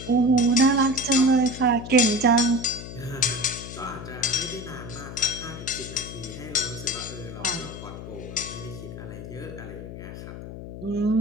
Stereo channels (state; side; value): noise; left; hum, 11 dB below the sound